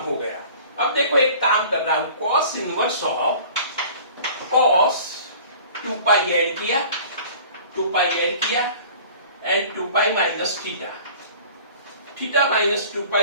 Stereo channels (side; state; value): both; inverted; correlation -0.46